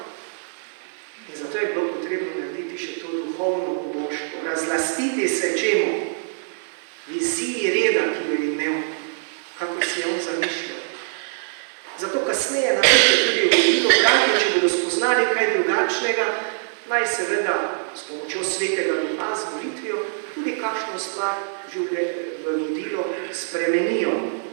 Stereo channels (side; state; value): left; silent; 63 dB below the other